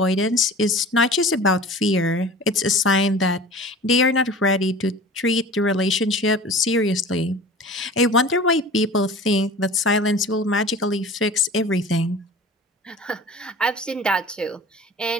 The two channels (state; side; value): normal; both; correlation 0.40